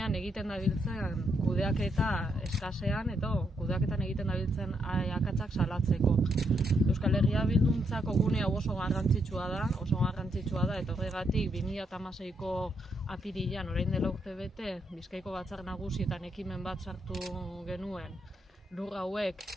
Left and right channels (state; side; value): normal; both; correlation 0.78